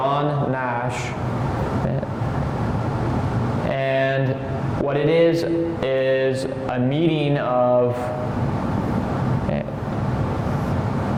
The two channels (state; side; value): identical; both; correlation 1.00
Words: Nash. And what it is a meeting of